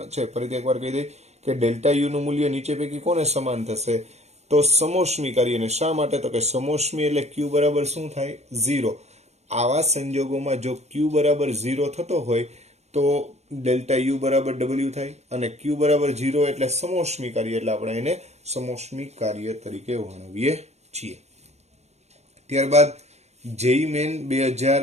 છે. ફરીથી એકવાર કહી દઈ કે ડેલ્ટા યુ નું મૂલ્ય નીચે પૈકી કોને સમાન થશે? તો સમોષ્મી કાર્યને. શા માટે? તો કે સમોષ્મી એટલે ક્યુ બરાબર શું થાય? 0. આવા સંજોગોમાં જો ક્યુ બરાબર 0 થતો હોય તો ડેલ્ટા યુ બરાબર ડબલ્યુ થાય અને ક્યુ બરાબર 0 એટલે સમોષ્મી કાર્ય, એટલે આપણે એને સમોષ્મી કાર્ય તરીકે વર્ણવીએ છીએ. ત્યારબાદ જેઈ મેન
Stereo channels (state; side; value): late; left; 0.32 ms